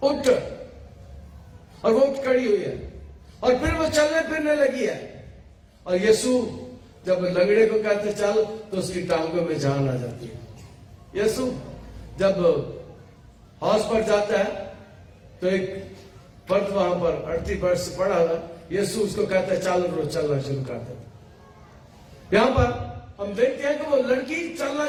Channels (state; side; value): identical; both; correlation 1.00